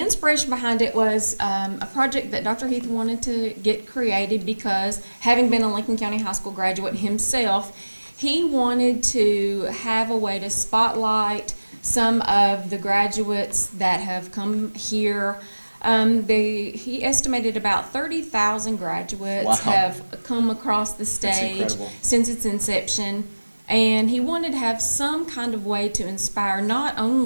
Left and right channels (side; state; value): both; inverted; correlation -1.00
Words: behind it was a project that Dr. Heath wanted to get created because, having been a Lincoln County High School graduate himself, he wanted to have a way to spotlight some of the graduates that have come here. He estimated about 30,000 graduates have come across the stage since its inception, and he wanted to have some kind of way to inspire not